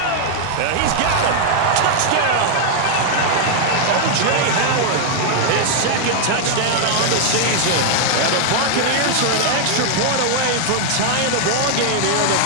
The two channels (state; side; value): different; both; correlation 0.00